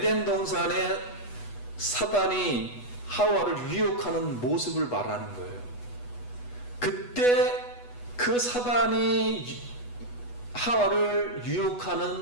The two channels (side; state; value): right; late; 8.2 ms